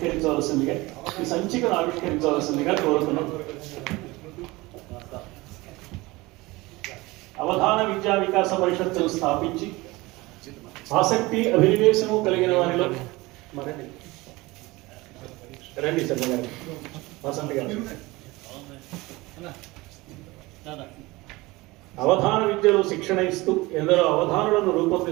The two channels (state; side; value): quieter; left; 21.6 dB